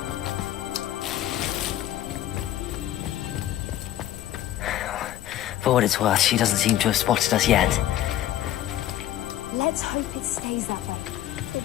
For what it's worth, she doesn't seem to have spotted us yet. Let's hope it stays that way. At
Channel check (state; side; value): quieter; right; 12.8 dB